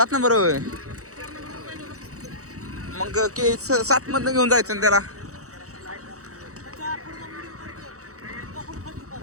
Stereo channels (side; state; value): left; late; 0.65 ms